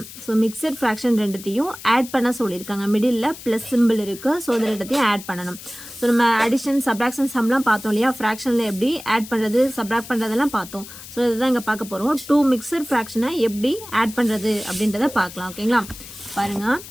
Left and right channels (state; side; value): noise; left; hiss, 15 dB below the sound